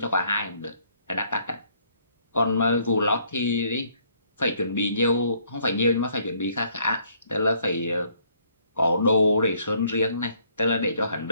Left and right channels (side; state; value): both; inverted; correlation -0.65